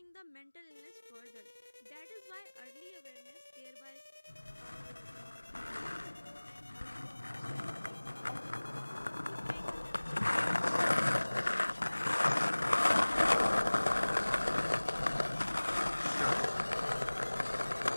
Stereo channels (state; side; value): inverted; both; correlation -1.00